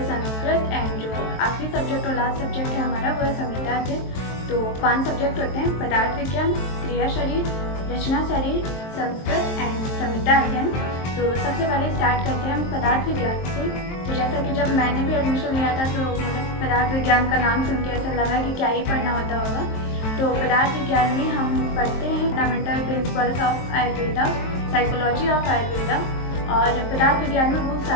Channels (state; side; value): late; right; 23 ms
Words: संस्कृत, एंड जो आखिरी सब्जेक्ट और लास्ट सब्जेक्ट है हमारा वो है संहिता अध्ययन। तो 5 सब्जेक्ट होते हैं: पदार्थ विज्ञान, क्रिया शरीर, रचना शरीर, संस्कृत एंड संहिता अध्ययन। तो सबसे पहले स्टार्ट करते हैं हम पदार्थ विज्ञान से। तो जैसा कि जब मैंने भी एडमिशन लिया था तो मतलब पदार्थ विज्ञान का नाम सुन के ऐसा लगा कि क्या ही पढ़ना होता होगा। तो पदार्थ विज्ञान में हम पढ़ते हैं fundamental principles of Ayurveda, psychology of Ayurveda, और पदार्थ विज्ञान में बहुत